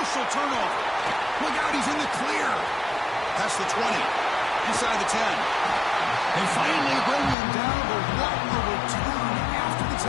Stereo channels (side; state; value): right; drops out; at 7.4 s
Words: turnover. Look out, he's in the clear. Past the 20, inside the 10. They finally bring him down, but what a return after the